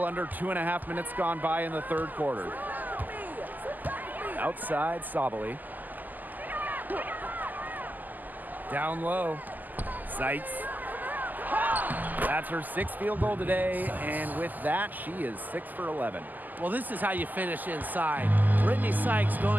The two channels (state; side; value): late; left; 0.084 ms